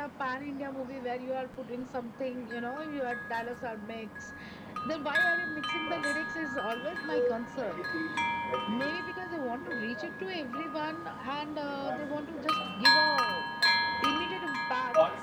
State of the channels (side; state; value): both; identical; correlation 1.00